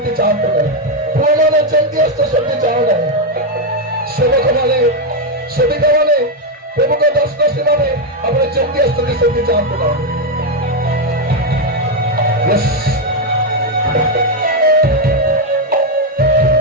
ଚାହାନ୍ତୁ ନାହିଁ। ପୁଅମାନେ ଯେମିତି ଆସିଛ ସେମିତି ଚାହୁଁ ନାହିଁ। ସେବକମାନେ, ସେବିକାମାନେ, ପ୍ରମୁଖ ଦାସଦାସୀମାନେ, ଆପଣ ଯେମିତି ଆସିଛନ୍ତି ସେମିତି ଚାହାନ୍ତୁ ନାହିଁ।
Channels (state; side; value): normal; both; correlation 0.04